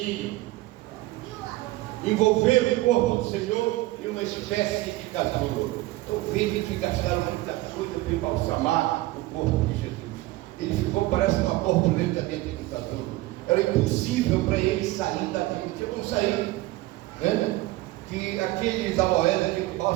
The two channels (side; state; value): left; quieter; 18.4 dB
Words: envolveram o corpo do Senhor em uma espécie de casulo. Então veja que gastaram muita coisa para embalsamar o corpo de Jesus. Ele ficou, parece uma borboleta dentro do casulo. Era impossível para ele sair dali. Não tinha como sair, né? Que aqueles aloés, aquele